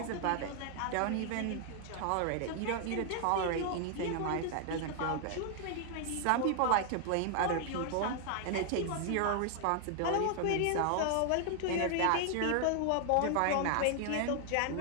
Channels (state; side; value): different; both; correlation 0.00